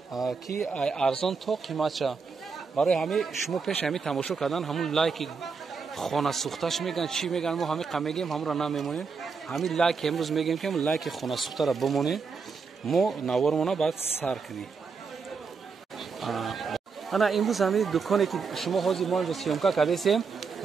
ки арзон то қиматша. барои ҳами шумо пеши ҳами тамошо кардан ҳамун лайки хонасӯхташ мегӯянд чӣ мегӯянд, мо ҳами мегӯем ҳамуро намемонем. ҳами лайки имрӯз мегӯем ки лайки хонасӯхтаро бимонем, мо навормона баъд сар кунем. ана имрӯз ҳами дуконе ки шумо ҳозир мо инҷо сиёмка кардесем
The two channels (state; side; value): quieter; left; 5.2 dB